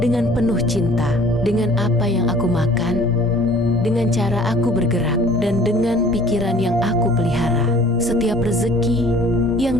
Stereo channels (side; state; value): both; normal; correlation 0.51